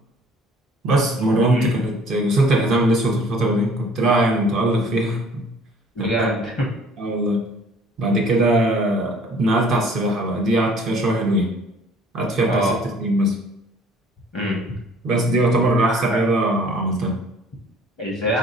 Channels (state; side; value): normal; both; correlation 0.55